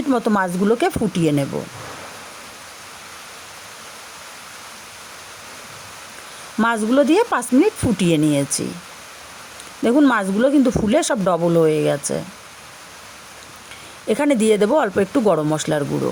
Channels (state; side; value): identical; both; correlation 1.00